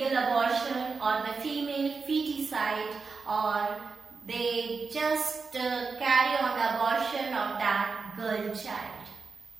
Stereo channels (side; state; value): left; quieter; 4.7 dB